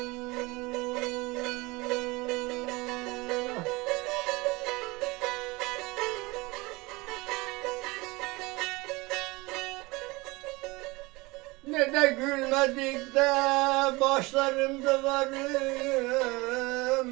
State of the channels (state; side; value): quieter; left; 23.3 dB